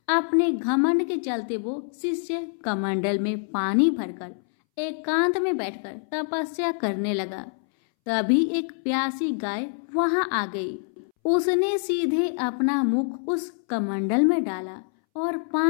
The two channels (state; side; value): silent; right; 61 dB below the other